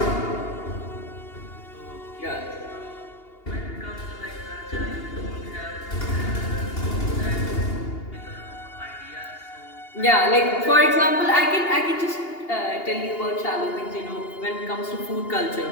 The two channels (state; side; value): late; right; 2.8 ms